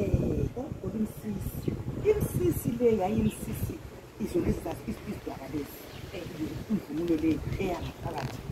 imsisi le yayimsisi izona isidwaba lezi imvunulo le eyangaphakathi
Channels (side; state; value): both; identical; correlation 1.00